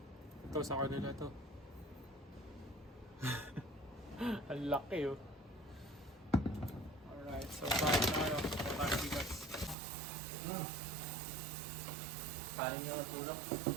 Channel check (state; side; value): drops out; left; at 9.8 s